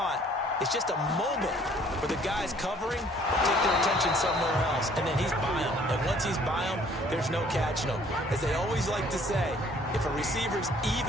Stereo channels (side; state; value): both; normal; correlation 0.58